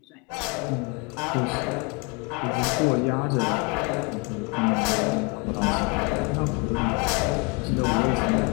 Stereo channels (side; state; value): right; quieter; 30.8 dB